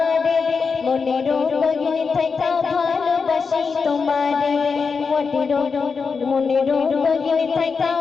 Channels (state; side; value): quieter; right; 5.2 dB